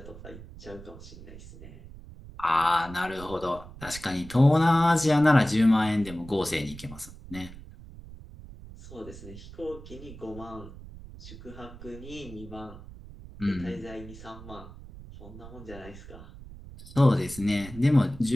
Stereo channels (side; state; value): right; noise; rumble, 16 dB below the sound